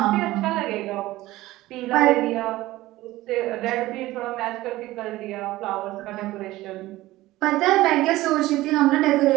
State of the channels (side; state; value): left; quieter; 17.3 dB